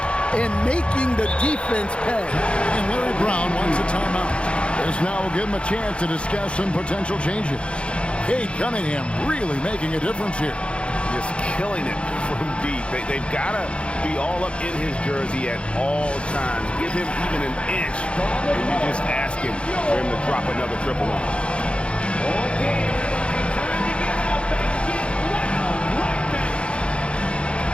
and making the defense pay. And Larry Brown wants a timeout. This now will give him a chance to discuss some potential changes. Cade Cunningham really making a difference here. Just killing it from deep. They've got to be all up in his jersey at all times. Give him even an inch, and you're just asking for him to drop another triple on him. Time to get up and get loud right now.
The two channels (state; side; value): late; right; 0.058 ms